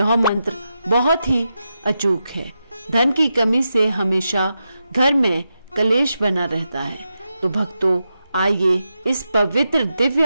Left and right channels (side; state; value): both; inverted; correlation -0.88